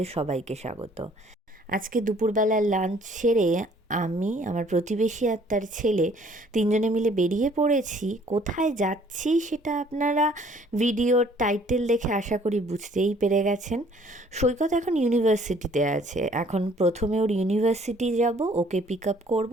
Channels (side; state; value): both; normal; correlation 0.58